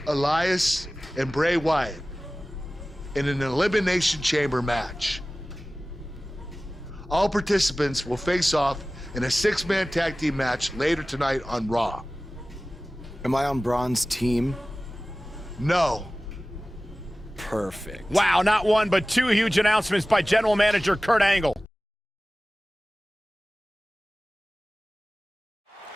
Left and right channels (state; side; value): normal; both; correlation 0.97